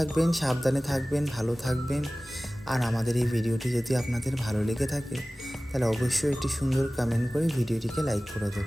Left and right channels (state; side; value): normal; both; correlation 0.98